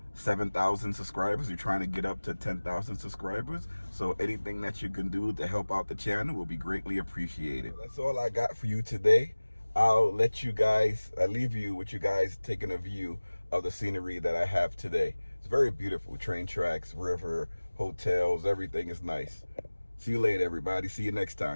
7,000 subscribers. We're trying to get up to 10,000 subscribers. So anything that you can do to help out the channel will be greatly appreciated. That's all I got for you today. I'll leave you with you guys taking a view of the scenery that I have today. It's very beautiful. Train tracks, river, hotels, everything is nice. See you later, everybody. See you next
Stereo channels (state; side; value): inverted; both; correlation -1.00